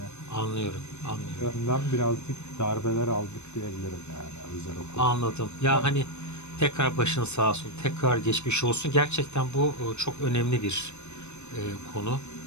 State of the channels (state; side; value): late; right; 0.82 ms